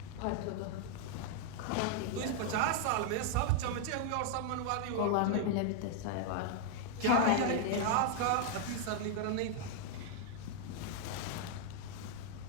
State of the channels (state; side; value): different; both; correlation 0.00